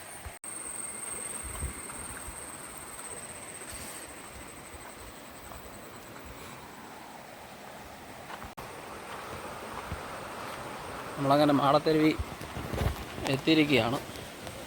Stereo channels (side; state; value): both; identical; correlation 1.00